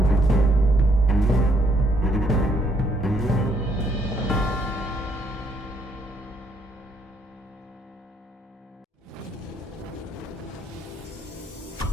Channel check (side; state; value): both; normal; correlation 0.70